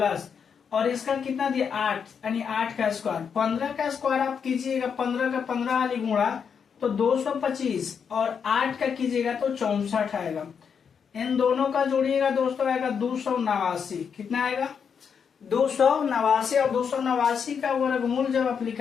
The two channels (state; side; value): quieter; right; 6.8 dB